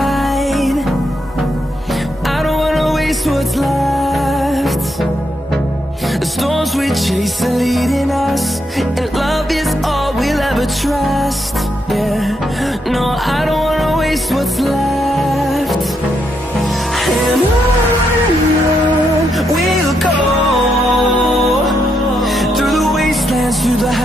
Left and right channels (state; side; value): normal; both; correlation 0.80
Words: I don't wanna waste what's left. The storms we chase are leading us, and love is all we'll ever trust. Yeah, no, I don't wanna waste what's left. And on we'll go, through the wastelands, through the